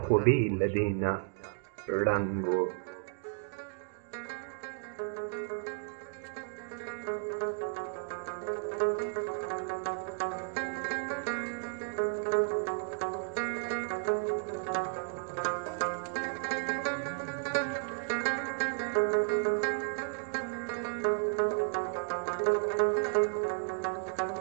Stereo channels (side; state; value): left; silent; 55 dB below the other